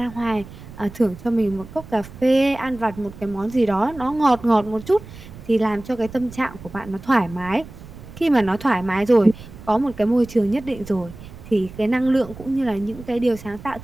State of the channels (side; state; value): right; noise; rumble, 16 dB below the sound